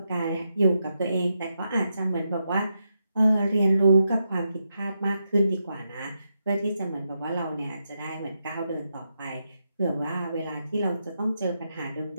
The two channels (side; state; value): both; inverted; correlation -0.84